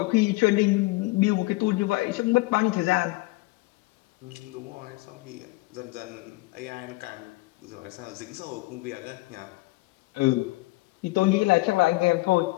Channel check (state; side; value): quieter; right; 22.0 dB